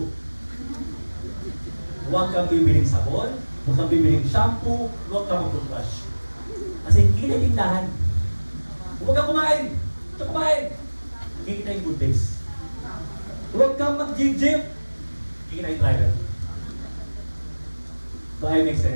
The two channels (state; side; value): inverted; both; correlation -1.00